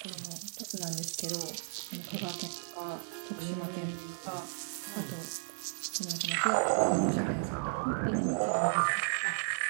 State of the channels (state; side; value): silent; left; 55 dB below the other